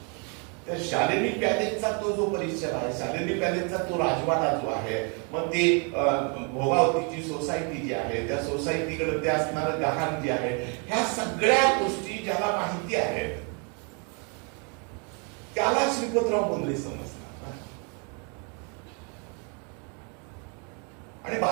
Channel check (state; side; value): quieter; left; 36.3 dB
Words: त्या शालिनी पॅलेसचा तो जो परिसर आहे, शालिनी पॅलेसचा तो राजवाडा जो आहे, मग ते भोगावतीची सोसायटी जी आहे, त्या सोसायटीकडे ते असणारं गहाण जे आहे, ह्या सगळ्या गोष्टी ज्याला माहिती आहेत त्याला श्रीपतराव बोंद्रे समजणार. आणि